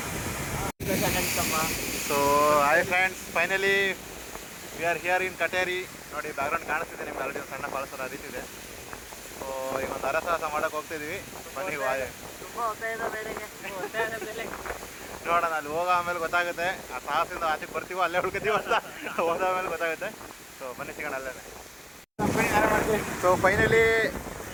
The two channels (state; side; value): identical; both; correlation 1.00